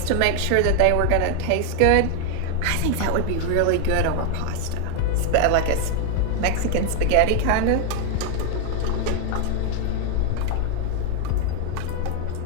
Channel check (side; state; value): both; different; correlation 0.01